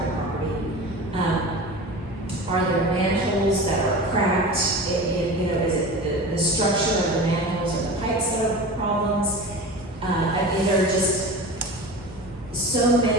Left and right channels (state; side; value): normal; both; correlation 0.32